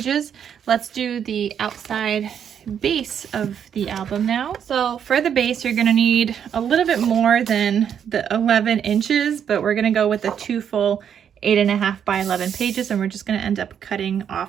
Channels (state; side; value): quieter; left; 8.4 dB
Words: Let's do the outside base of the album now. So for the base, you're gonna need a little bit more than the 11 inches, but we're gonna go with the 2 full 8.5 by 11 pages, and we're just gonna end up cutting